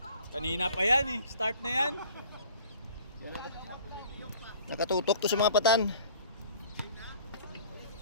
Kanina pa yan eh, start na yan. Nakatutok to sa mga patan.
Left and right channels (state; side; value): inverted; both; correlation -0.49